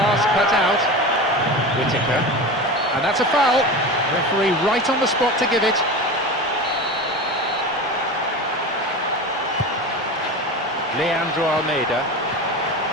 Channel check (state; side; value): normal; both; correlation 0.28